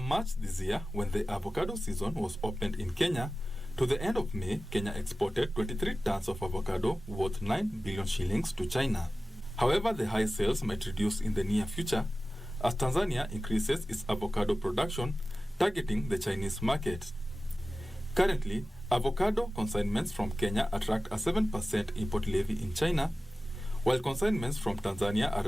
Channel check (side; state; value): both; normal; correlation 0.96